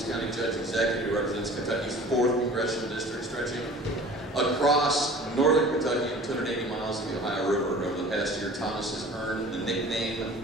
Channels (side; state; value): both; normal; correlation 0.44